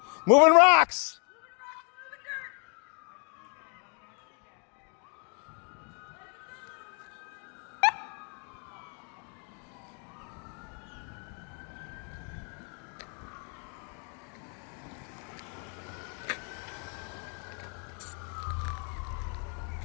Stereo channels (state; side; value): quieter; right; 38.9 dB